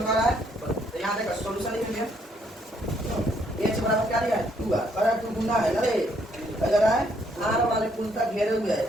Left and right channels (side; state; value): both; normal; correlation 0.70